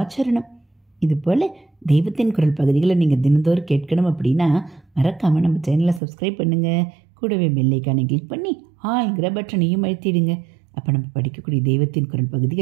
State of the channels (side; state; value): left; drops out; at 6.0 s